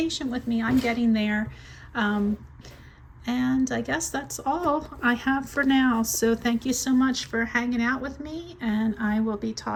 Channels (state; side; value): identical; both; correlation 1.00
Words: with me. I'm getting there. And I guess that's all I have for now. So thank you so much for hanging out with me, and I will be